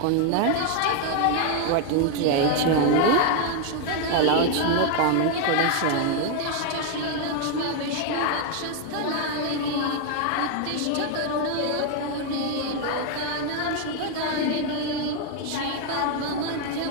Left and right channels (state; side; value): different; both; correlation 0.00